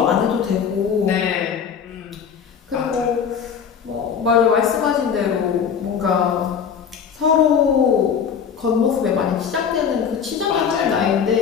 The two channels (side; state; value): right; quieter; 7.2 dB